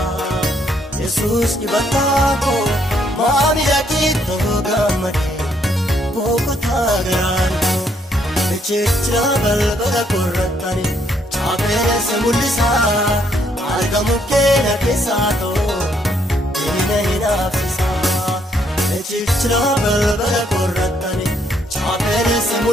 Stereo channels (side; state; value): both; normal; correlation 0.71